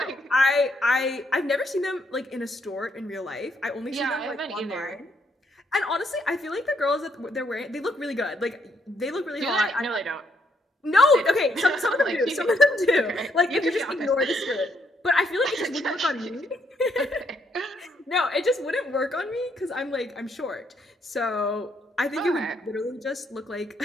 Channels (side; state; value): both; normal; correlation 0.74